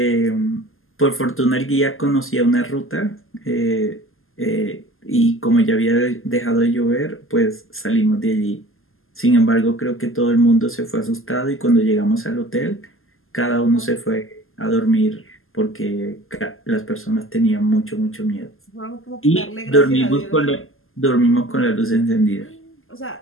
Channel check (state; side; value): late; right; 0.60 ms